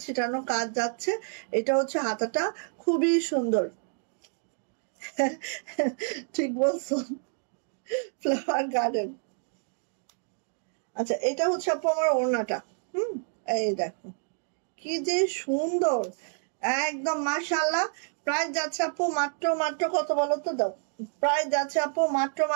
ছিটানো কাজ যাচ্ছে। এটা হচ্ছে হাতাটা, খুবই সুন্দর। ঠিক বলছো, ফ্লাওয়ার গার্ডেন। আচ্ছা, এটা হচ্ছে আপু আমার ওড়নাটা। এই দেখো কি যে সুন্দর, একদম মাশাআল্লাহ। প্রাইস যাচ্ছে আপু মাত্র কত বলো তো, দাও। প্রাইস যাচ্ছে আপু মাত্র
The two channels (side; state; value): left; silent; 59 dB below the other